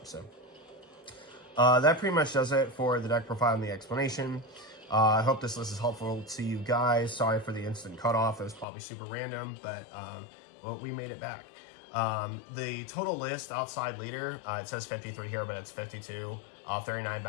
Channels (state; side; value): drops out; right; at 8.7 s